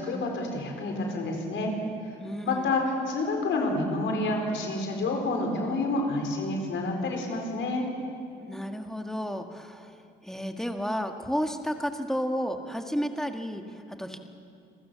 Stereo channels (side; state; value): both; normal; correlation 0.53